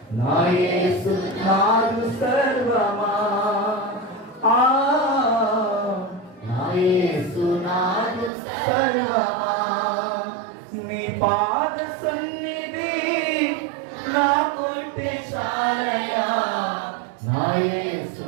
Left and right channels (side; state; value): left; drops out; at 8.3 s